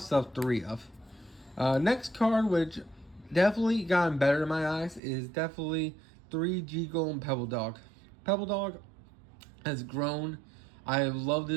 3 of. Next card, which definitely gotten better in my eyes, is definitely 3 Golem Pebble Dog. Pebble Dog has grown. I love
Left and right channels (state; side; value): drops out; left; at 5.0 s